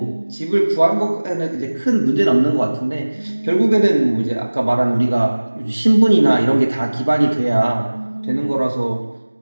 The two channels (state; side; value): inverted; both; correlation -1.00